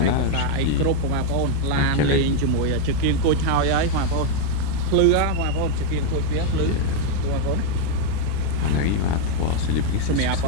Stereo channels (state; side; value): different; both; correlation 0.01